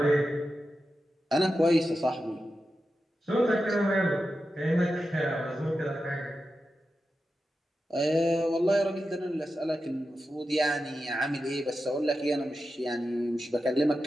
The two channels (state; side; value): normal; both; correlation 0.91